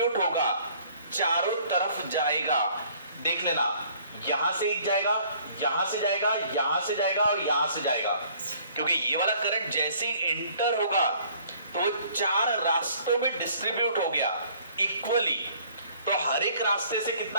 होगा, चारों तरफ जाएगा। देख लेना, यहां से एक जाएगा, यहां से जाएगा, यहां से जाएगा और यहां से जाएगा। क्योंकि ये वाला करंट जैसे ही इंटर होगा तो 4 रास्तों में डिस्ट्रीब्यूट हो गया इक्वली। तो हर एक रास्ते से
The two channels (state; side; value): inverted; both; correlation -0.57